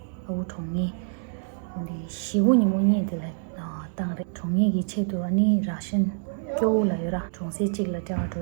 au tongi. Only she wouldn't money the like tang tongi gichetu ani Russian kyo la yura chungsi chigla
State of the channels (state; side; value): silent; left; digital silence